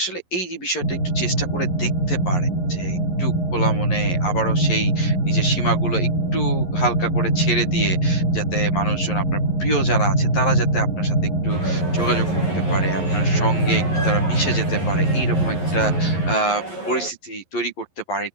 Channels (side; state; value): right; late; 11 ms